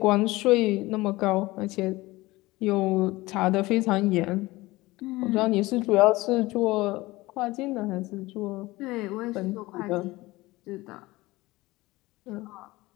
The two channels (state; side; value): quieter; right; 20.1 dB